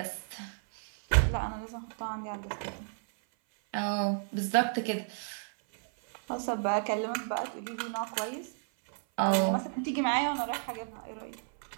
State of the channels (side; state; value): left; silent; 56 dB below the other